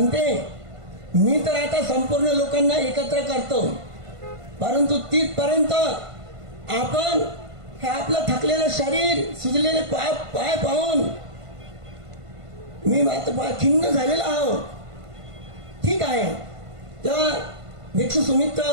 मी तर आता संपूर्ण लोकांना एकत्र करतो, परंतु तिथपर्यंत आपण हे आपलं थकलेलं शरीर, सुजलेले पाय पाहून मी मात्र खिन्न झालेला आहो. ठीक आहे. तेव्हा भिक्षू सुमित्र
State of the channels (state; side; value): late; left; 1.5 ms